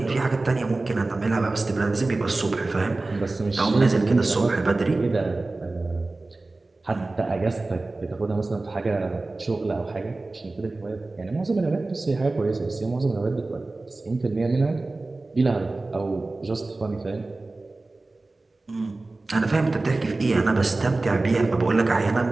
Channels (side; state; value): left; quieter; 3.2 dB